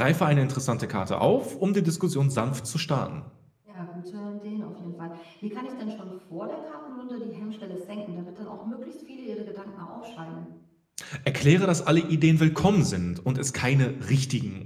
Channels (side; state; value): both; identical; correlation 1.00